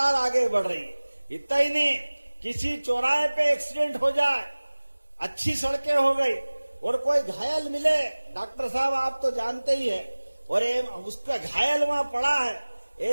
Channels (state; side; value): inverted; both; correlation -1.00